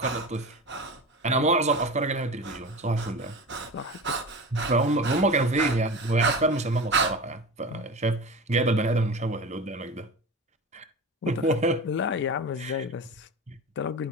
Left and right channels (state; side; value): normal; both; correlation 0.30